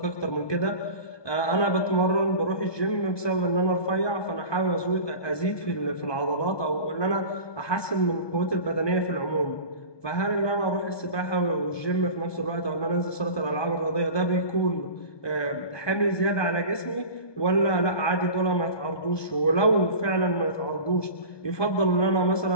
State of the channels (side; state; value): right; late; 1.2 ms